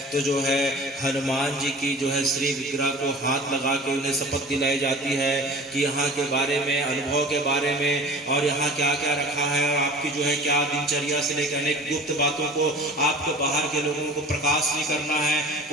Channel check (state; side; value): normal; both; correlation 0.41